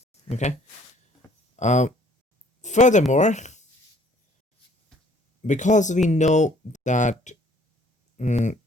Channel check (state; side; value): normal; both; correlation 0.58